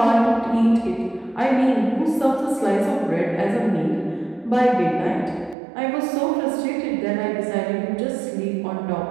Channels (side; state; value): left; drops out; at 5.6 s